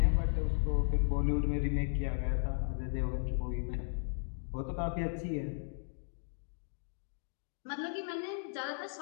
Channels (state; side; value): silent; right; digital silence